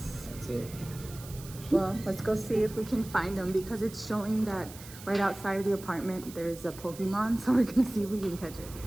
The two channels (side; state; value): right; noise; hiss, 16 dB below the sound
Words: that's it. Well, let's go see if we can find them because it's showing that right outside of the apartment there's a Pokemon, so we're gonna see if we can catch it.